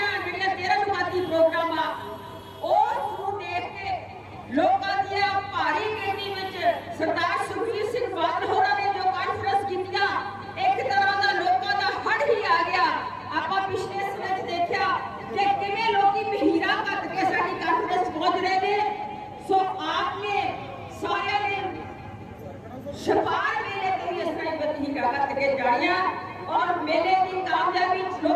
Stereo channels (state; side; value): identical; both; correlation 1.00